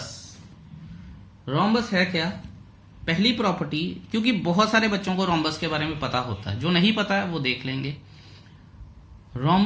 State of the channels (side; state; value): both; identical; correlation 1.00